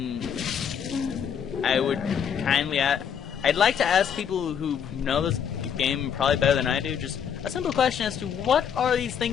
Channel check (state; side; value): quieter; right; 7.9 dB